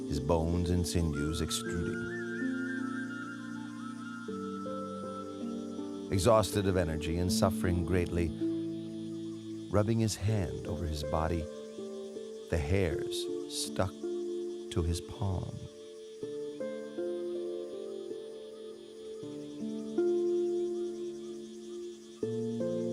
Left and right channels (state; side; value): identical; both; correlation 1.00